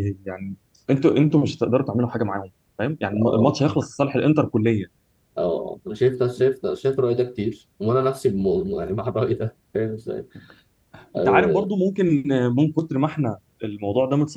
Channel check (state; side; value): identical; both; correlation 1.00